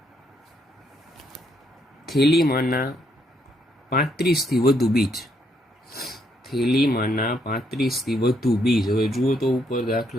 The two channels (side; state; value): both; normal; correlation 0.74